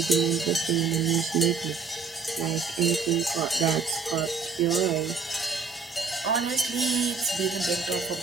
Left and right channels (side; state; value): left; quieter; 5.0 dB